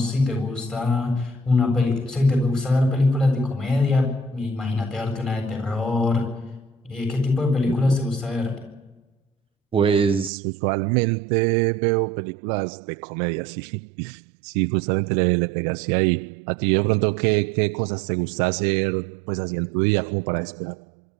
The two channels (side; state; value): left; drops out; at 10.3 s